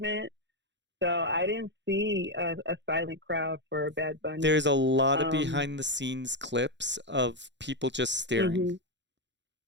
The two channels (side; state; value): left; late; 0.52 ms